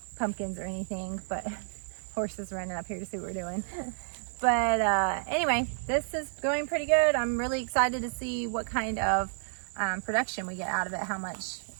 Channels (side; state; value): left; silent; 57 dB below the other